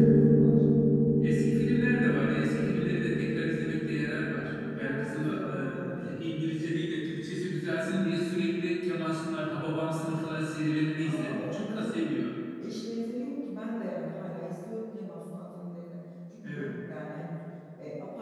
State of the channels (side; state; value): both; identical; correlation 1.00